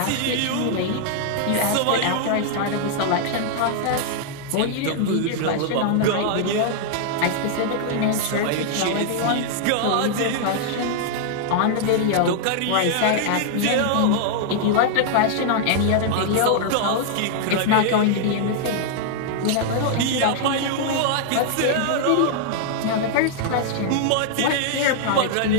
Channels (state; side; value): different; both; correlation -0.01